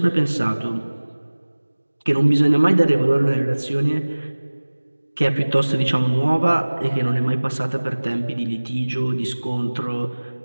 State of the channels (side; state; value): both; inverted; correlation -1.00